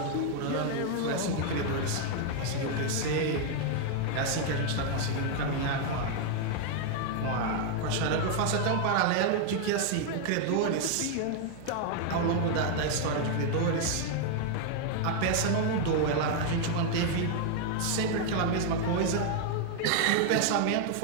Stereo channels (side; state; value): both; different; correlation 0.00